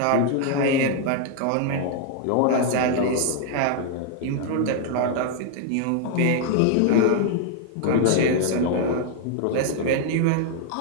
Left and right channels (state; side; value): different; both; correlation 0.00